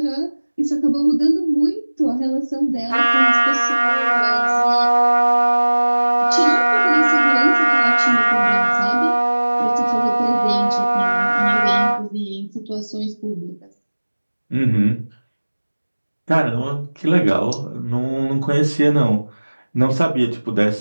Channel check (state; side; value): inverted; both; correlation -1.00